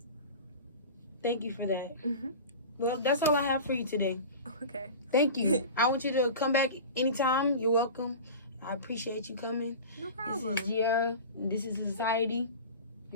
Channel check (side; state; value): both; inverted; correlation -0.33